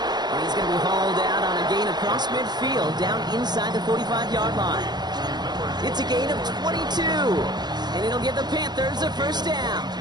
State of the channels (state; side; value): late; left; 0.20 ms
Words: And he's going to be hauled out on a gain across midfield, down inside the 45-yard line. It's a gain of 22, and it'll give the Panthers a first down.